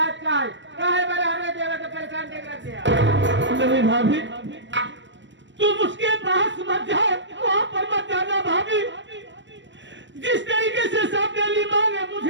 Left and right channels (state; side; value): late; left; 0.54 ms